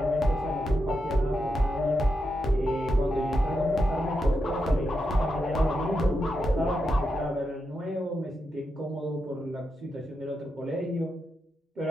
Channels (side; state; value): both; normal; correlation 0.86